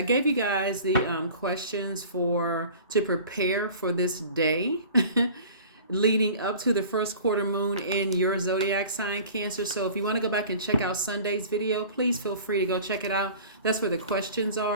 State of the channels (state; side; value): inverted; both; correlation -0.43